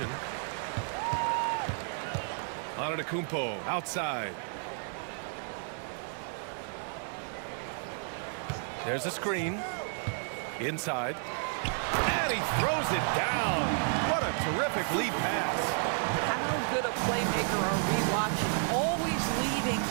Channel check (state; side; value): silent; left; 57 dB below the other